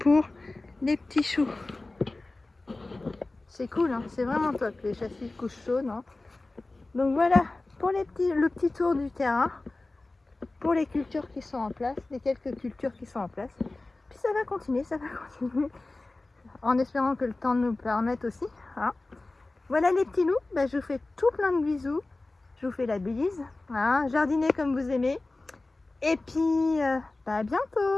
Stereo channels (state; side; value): quieter; right; 3.1 dB